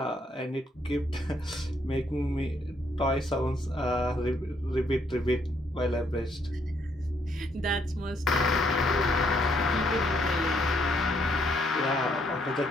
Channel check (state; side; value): normal; both; correlation 0.71